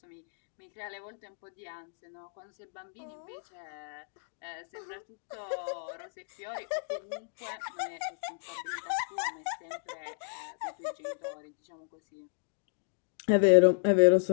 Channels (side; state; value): right; silent; digital silence